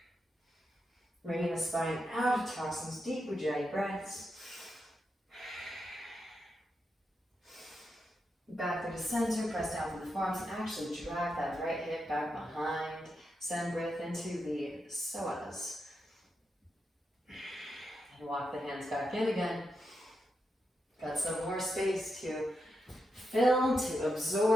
Bringing the spine out of tossings, deep Ujjayi breaths. Back through the center, press down through the forearms, and actually drag that right hip back behind. Send breath into the psoas. And walk the hands back in again. Got some more space to fill, to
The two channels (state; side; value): normal; both; correlation 0.86